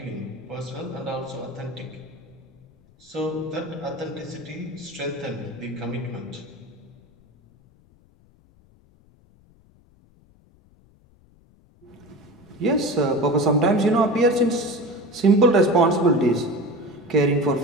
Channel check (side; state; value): left; noise; rumble, 29 dB below the sound